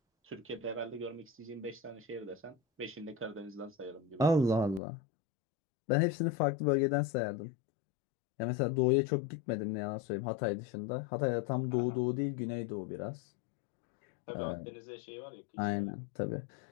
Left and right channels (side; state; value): right; drops out; at 4.8 s